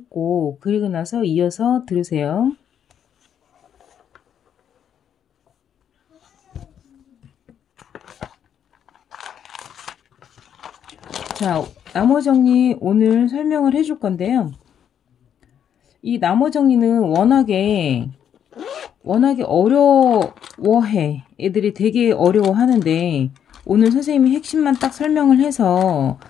그리고 나서 이어서 들으세요. 자, 나머 정리 오늘 설명을 해줄 건데요. 이 나머 정리는 워낙에 어려워해. 애들이 되게 어려워하는데 오늘 선생님이 핵심만 딱 설명을 해서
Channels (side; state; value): right; quieter; 8.9 dB